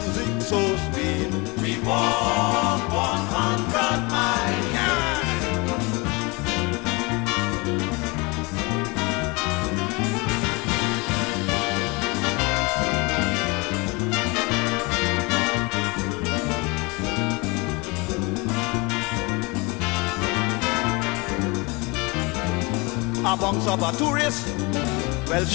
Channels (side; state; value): right; quieter; 27.0 dB